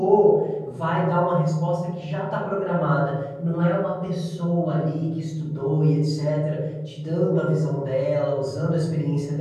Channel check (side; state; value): both; identical; correlation 1.00